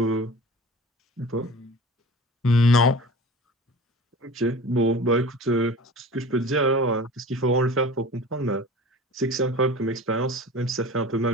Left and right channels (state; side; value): normal; both; correlation 0.38